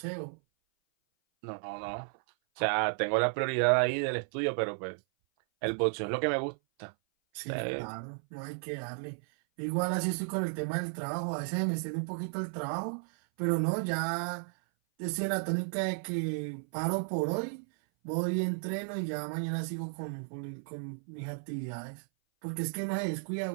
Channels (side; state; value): left; silent; 55 dB below the other